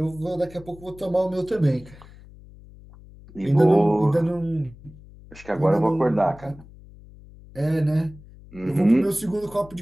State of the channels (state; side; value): noise; left; hum, 21 dB below the sound